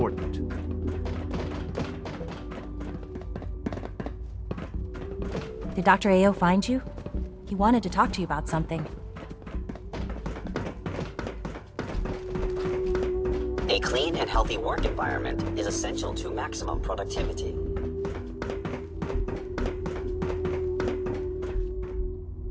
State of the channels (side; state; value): both; identical; correlation 1.00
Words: Did Dr. Ayo find you? He wanted to talk to you about something. A clean and healthy work environment is essential to maximum productivity.